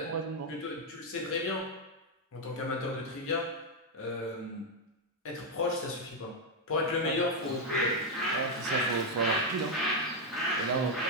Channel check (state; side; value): normal; both; correlation 0.01